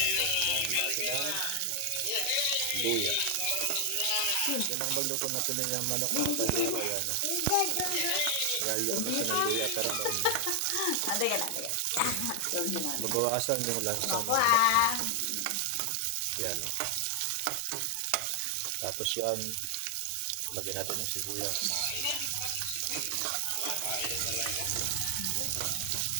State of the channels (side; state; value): both; different; correlation 0.00